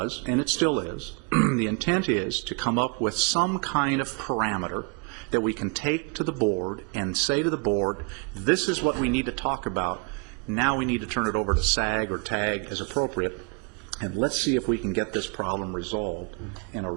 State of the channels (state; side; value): quieter; left; 32.9 dB